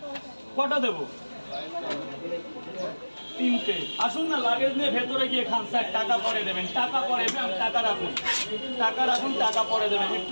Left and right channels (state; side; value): inverted; both; correlation -1.00